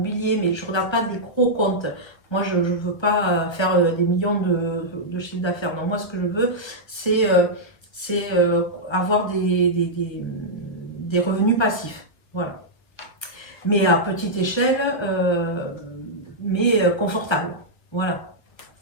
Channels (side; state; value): right; late; 1.1 ms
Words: mais je ne regarde pas des gros comptes. Moi, je ne veux pas faire des millions de chiffre d'affaires. Non, moi, ce que je veux, c'est avoir des revenus passifs. Voilà. Mais à petite échelle, mais confortable. Voilà.